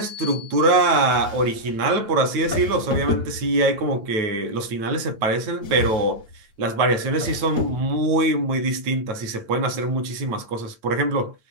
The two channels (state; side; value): late; left; 9.3 ms